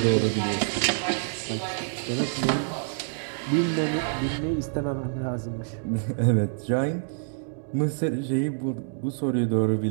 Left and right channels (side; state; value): left; silent; digital silence